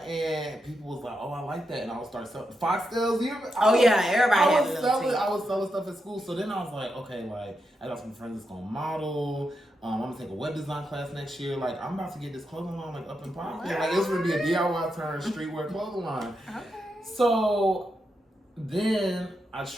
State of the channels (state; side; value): normal; both; correlation 0.85